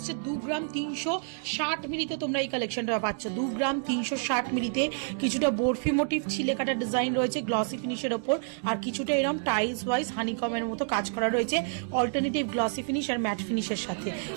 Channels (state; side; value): silent; left; digital silence